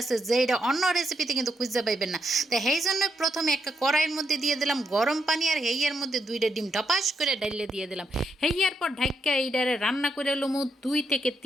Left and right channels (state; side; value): normal; both; correlation 0.79